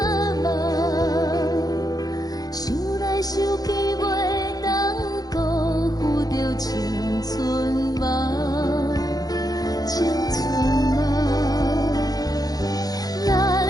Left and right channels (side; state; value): right; late; 0.18 ms